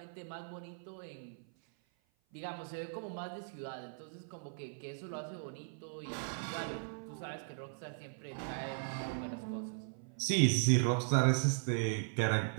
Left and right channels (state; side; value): silent; left; 52 dB below the other